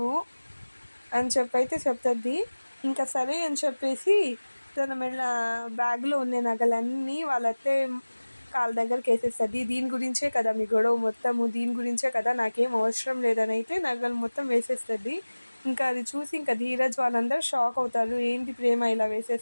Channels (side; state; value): both; inverted; correlation -1.00